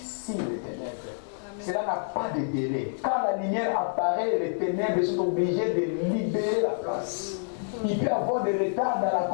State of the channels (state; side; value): silent; right; digital silence